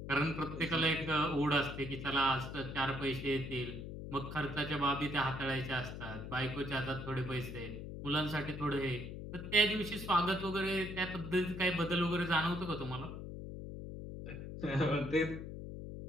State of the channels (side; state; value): left; noise; hum, 8 dB below the sound